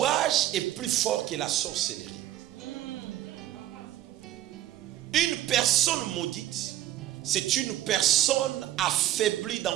est plus fort que la sorcellerie. Une personne maudite, c'est une personne affaiblie dans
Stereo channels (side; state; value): left; quieter; 13.5 dB